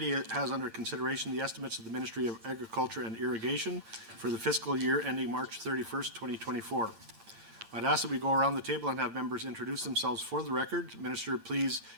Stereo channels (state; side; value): late; left; 8.8 ms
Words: has under consideration the estimates of the Ministry of Agriculture and Irrigation for the fiscal year ending March 31st, 2024. I'd ask that we go around the table and have members introduce themselves for the record. Minister, please